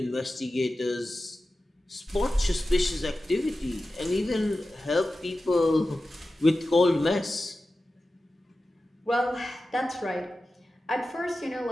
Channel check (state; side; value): normal; both; correlation 0.94